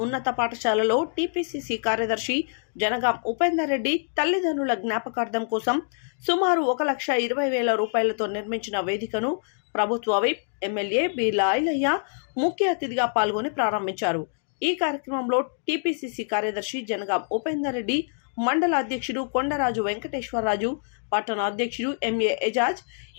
ఉన్నత పాఠశాలలో టీపీసీసీ కార్యదర్శి జనగాం ఉపేందర్ రెడ్డి తల్లిదండ్రుల జ్ఞాపకార్థం కోసం సుమారు 1,20,000 రూపాయలతో నిర్మించిన వేదికను ప్రభుత్వ విప్ ఎమ్మెల్యే బీల ఐలయ్య ముఖ్య అతిథిగా పాల్గొని ప్రారంభించారు. ఈ కార్యక్రమంలో టీపీసీసీ కార్యదర్శి జనగాం ఉపేందర్ రెడ్డి, మండల అధ్యక్షుడు కొండరాజు వెంకటేశ్వరరాజు, పట్టణ అధ్యక్షుడు MA Ejaz,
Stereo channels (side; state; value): right; silent; digital silence